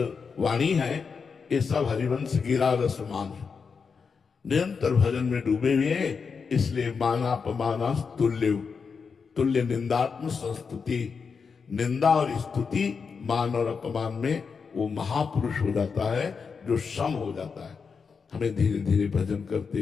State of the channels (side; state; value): right; quieter; 5.6 dB